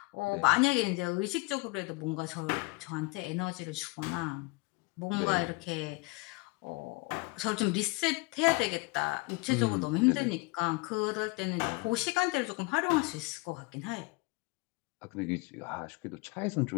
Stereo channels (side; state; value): right; quieter; 25.6 dB